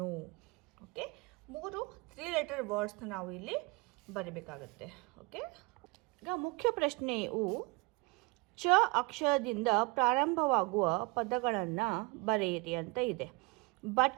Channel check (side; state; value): left; quieter; 27.3 dB